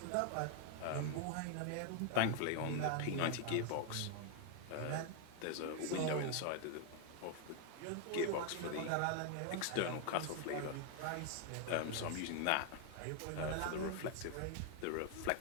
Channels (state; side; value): different; both; correlation 0.00